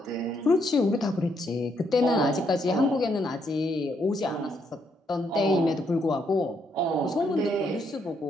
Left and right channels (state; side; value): normal; both; correlation 0.75